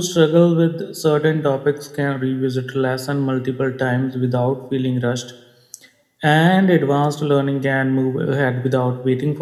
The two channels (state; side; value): identical; both; correlation 1.00